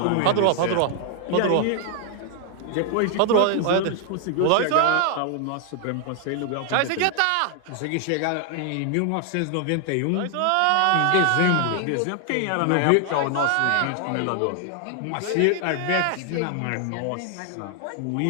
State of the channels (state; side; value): different; both; correlation 0.00